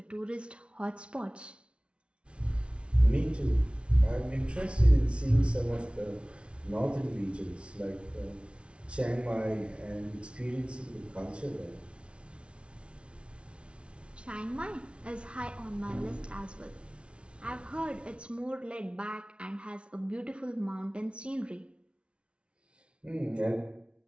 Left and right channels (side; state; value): left; late; 0.059 ms